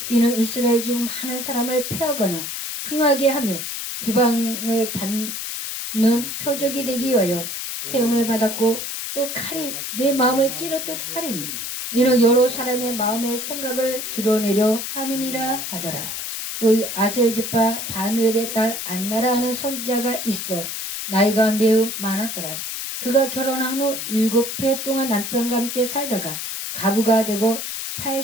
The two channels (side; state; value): left; noise; hiss, 5 dB below the sound